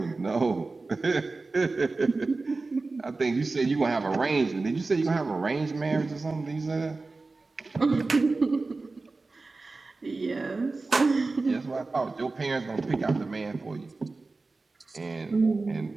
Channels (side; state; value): left; quieter; 3.6 dB